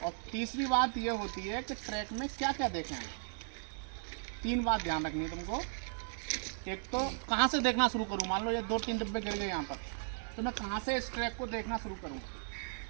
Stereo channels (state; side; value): silent; left; digital silence